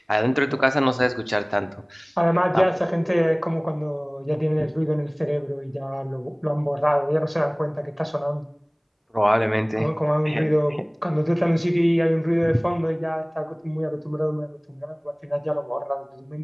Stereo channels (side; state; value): both; identical; correlation 1.00